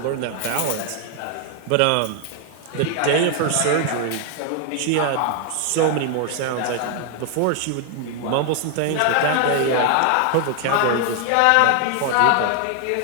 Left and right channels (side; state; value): both; different; correlation 0.00